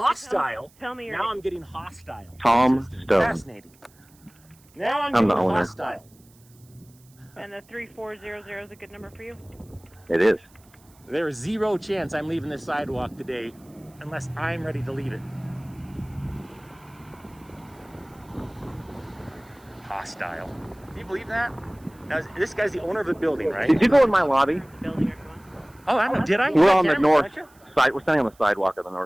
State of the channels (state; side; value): noise; right; hiss, 29 dB below the sound